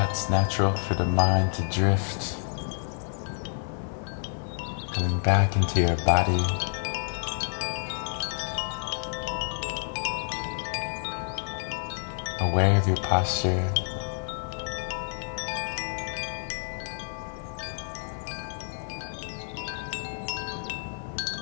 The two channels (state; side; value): silent; right; digital silence